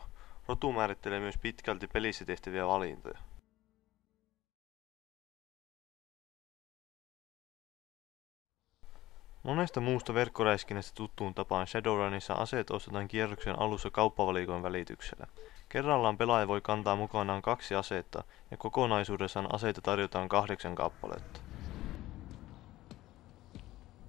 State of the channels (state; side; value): quieter; right; 16.3 dB